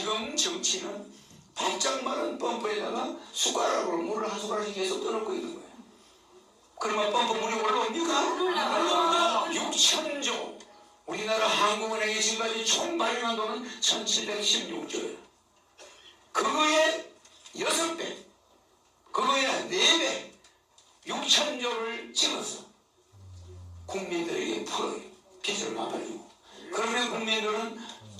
정치는 바짝 마른 펌프에다가 숟가락으로 물을 한 숟가락씩 계속 떠넣고 있는 거예요. 그러면 펌프 물이 올라옵니까? 6,000조. 우리나라 한국은행이 지금까지 총 발행한 돈은 1,716조예요. 그거에 6배, 그거에 4배, 6,000조를 찍어서 국민들에게 풀어요. 빚을 갚아주고. 그러면 국민들은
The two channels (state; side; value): identical; both; correlation 1.00